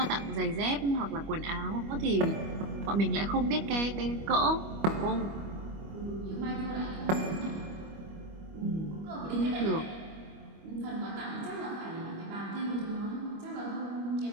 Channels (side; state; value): left; late; 25 ms